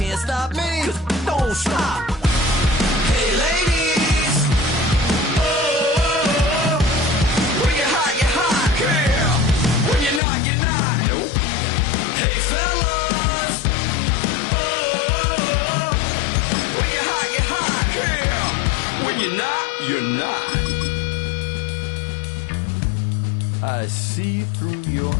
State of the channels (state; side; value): drops out; right; at 10.2 s